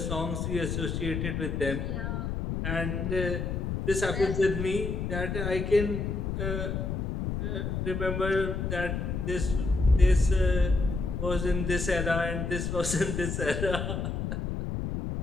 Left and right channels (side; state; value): left; noise; rumble, 2 dB below the sound